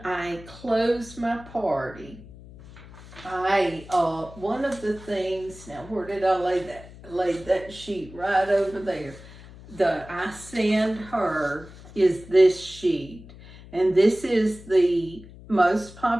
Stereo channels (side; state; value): left; noise; hum, 18 dB below the sound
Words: I close my party, one of the things, now where did I lay that? Laid that sheet right over there. I send her is this sheet, and this is the most